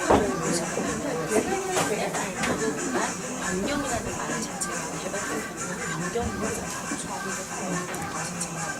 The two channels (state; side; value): identical; both; correlation 1.00